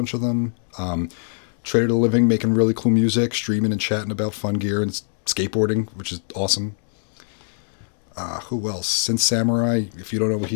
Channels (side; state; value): right; silent; digital silence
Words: of them. Trader to Living, making really cool music, streaming and chatting about fun gear and skateboarding, which is awesome. Who else? Synth Samurai. If you don't know what